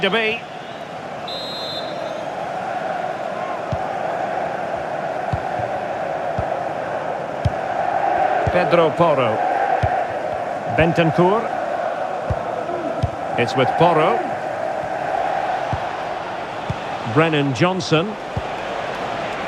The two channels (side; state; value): both; identical; correlation 1.00